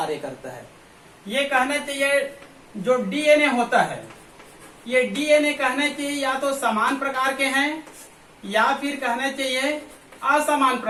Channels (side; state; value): both; identical; correlation 1.00